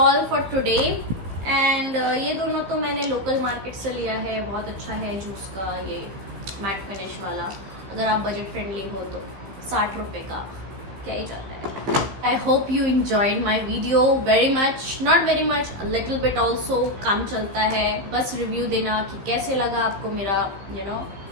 for today. And ये दोनों तो मैंने लोकल मार्केट से लिया है. बहुत अच्छा है जूस का ये मैट फिनिश वाला. अगर आप बजट फ्रेंडली हो तो 60 रुपए का क्या ही जाता है. I hope you enjoyed my video very much. Not very much, little bit also. काम चलता है. बस रिव्यू देना कि कैसे लगा आपको मेरा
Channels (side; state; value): left; late; 15 ms